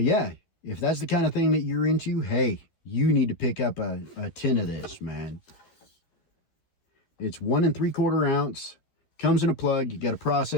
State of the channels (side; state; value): right; late; 12 ms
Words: yeah, if that's the kind of thing that you're into, hey, you need to pick up a tin of this, man. It's 1 3/4 ounce. Comes in a plug. You got to